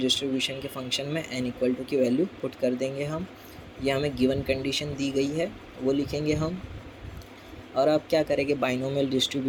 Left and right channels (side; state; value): both; identical; correlation 1.00